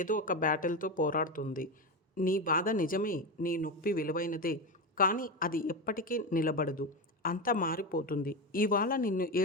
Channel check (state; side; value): normal; both; correlation 0.16